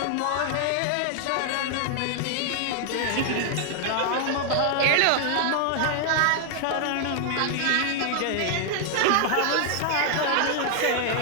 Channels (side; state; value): both; different; correlation 0.00